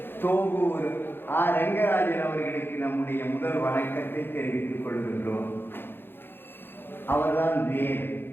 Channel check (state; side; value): late; right; 0.10 ms